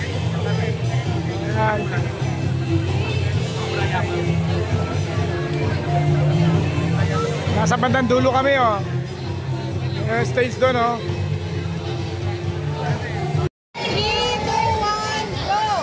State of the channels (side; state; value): both; identical; correlation 1.00